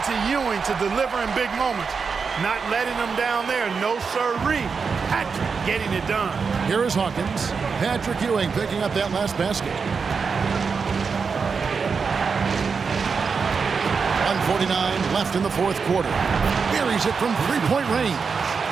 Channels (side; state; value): left; quieter; 5.4 dB